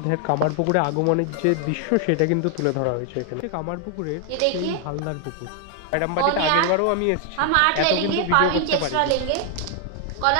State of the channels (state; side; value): different; both; correlation 0.00